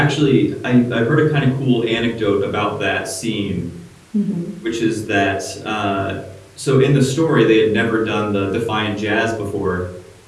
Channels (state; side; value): identical; both; correlation 1.00